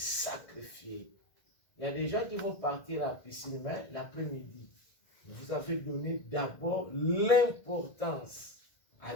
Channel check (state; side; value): late; right; 1.7 ms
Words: Il y a des gens qui vont partir à la piscine, mais l'après-midi. Vous avez donné d'abord l'importance à